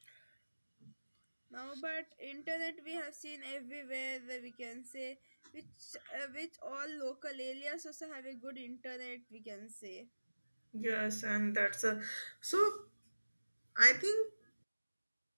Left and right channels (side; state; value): both; inverted; correlation -1.00